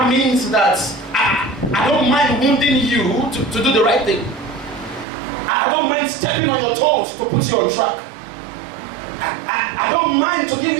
means that I don't mind wounding you to do the right thing. I don't mind stepping on your toes to put you on track. I don't mind to give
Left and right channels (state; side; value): drops out; left; at 5.1 s